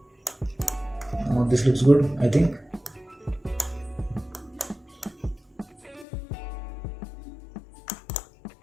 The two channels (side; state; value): right; drops out; at 6.1 s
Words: Now this looks good, I think.